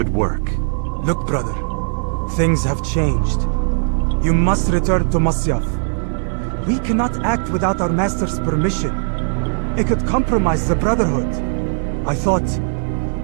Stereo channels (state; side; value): silent; left; 67 dB below the other